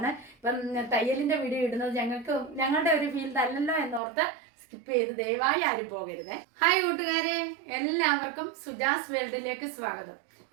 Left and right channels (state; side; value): drops out; left; at 4.0 s